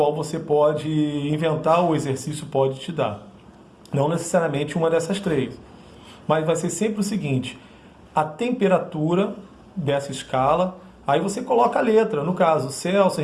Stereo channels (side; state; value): both; identical; correlation 1.00